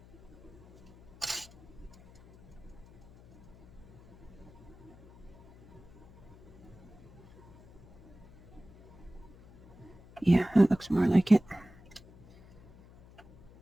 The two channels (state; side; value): noise; left; hum, 23 dB below the sound